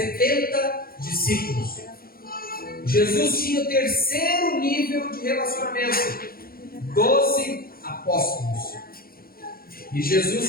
discípulos. Jesus tinha o terceiro nível de relacionamento, 12 apóstolos. E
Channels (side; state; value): right; late; 0.43 ms